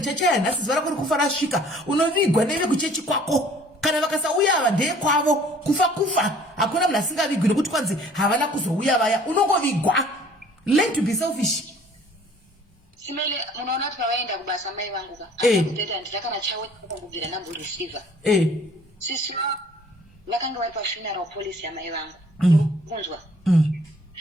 chachaya nhasi zuva rako rikufa rasvika unovigwa neve kuchechi kwako kana vakasauya ava ndeye kwavo kufa hakuna munhu asingavigwi nekuti kwanzi havana kuzouya vaya unongovigwa. Learn to be selfish. Simele munoona kuti pavaenda kubasa mai vangu ka akuteta nditakana chawe kubvira nambo receiver sisi vakanga vari pafuneral police yamai vangu kunzwa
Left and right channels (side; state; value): both; normal; correlation 0.54